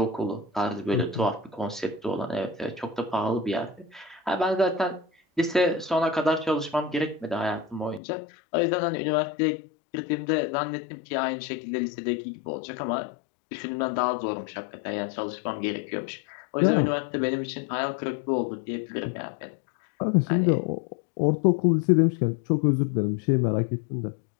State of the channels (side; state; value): right; drops out; at 8.0 s